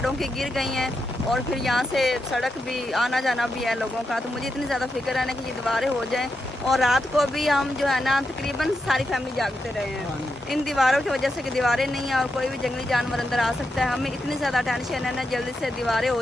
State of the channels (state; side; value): normal; both; correlation 0.85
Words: की गिर गई हैं, और फिर यहाँ से सड़क भी आना जाना भी है लोगों का। तो मुझे इतनी ज़्यादा फिक्र है ना कि ये दीवारें हो जाएं, और रात को भी हम जो है ना तकरीबन सारी फैमिली जागते रहे हैं इन दीवारों की वजह से, कि दीवारें नहीं है और कोई भी जंगली जानवर अंदर आ सकता है। हमें इतनी ज़्यादा टेंशन है ना, जल्दी से दीवारें